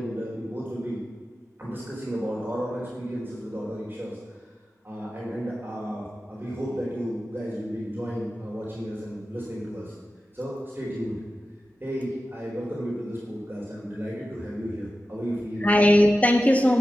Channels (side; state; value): both; normal; correlation 0.93